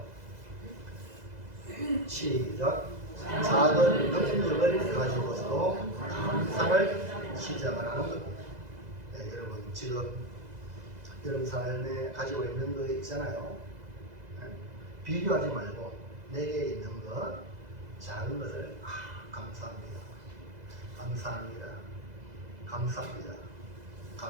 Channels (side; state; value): left; late; 2.0 ms